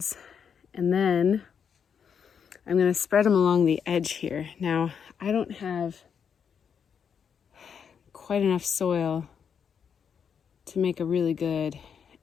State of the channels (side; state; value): right; quieter; 7.2 dB